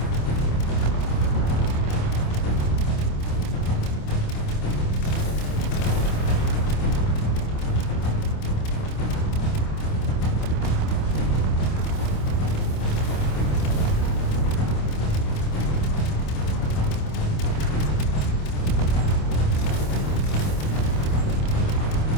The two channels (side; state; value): right; late; 26 ms